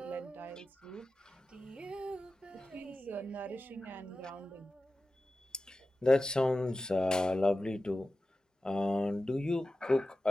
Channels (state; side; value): normal; both; correlation 0.94